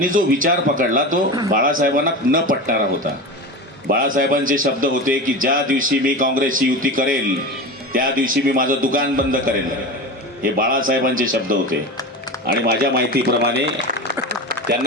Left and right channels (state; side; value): normal; both; correlation 0.26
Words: जो विचार पकडला तो बाळासाहेबांना न पटणारा होता. बाळासाहेबांचे शब्द होते की ज्या दिवशी मी काँग्रेसची युती करेल त्या दिवशी मी माझं दुकान बंद करेल. हे बाळासाहेबांचे शब्द होते. आणि माझ्या माहितीप्रमाणे